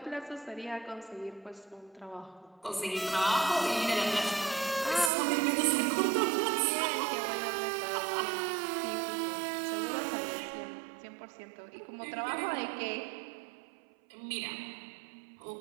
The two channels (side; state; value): left; drops out; at 5.1 s